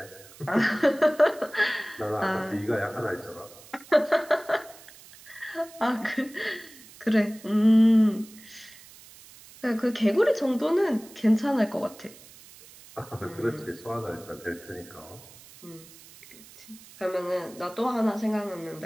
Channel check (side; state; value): right; noise; hiss, 21 dB below the sound